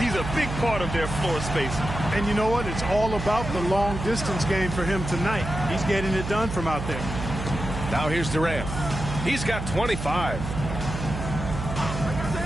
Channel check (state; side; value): noise; right; hum, 6 dB below the sound